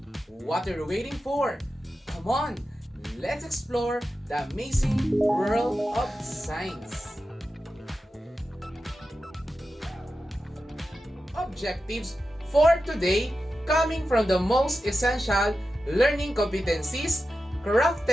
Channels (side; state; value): both; normal; correlation 0.91